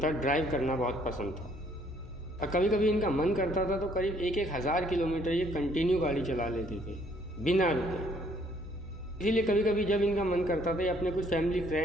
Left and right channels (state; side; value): normal; both; correlation 0.64